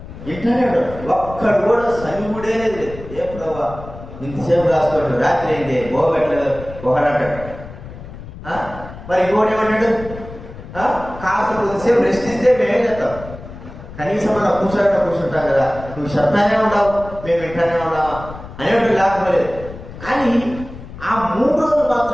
ఎట్లానే ఉంటారు. ఒక్కడు కూడా సనిగుడే లేదు. ఏ ప్రభావ ఇంతసేపు రాసుకోండి, రాత్రి అయింది పోగట్లేదు ఒకడంటాడు. మరి ఇంకోటి ఏమంటాడు? కాస్త కొద్దిసేపు రెస్ట్ ఇస్తే మేమేం చేస్తాం? కనీసం మనం కూర్చుంటాం కదా, నువ్వు చెప్తానే ఉండవు, మేము వింటానే ఉన్నావా అనేవాడు లేకపోలేదు. కానీ ఆ 3 రోజులు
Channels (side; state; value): left; noise; rumble, 14 dB below the sound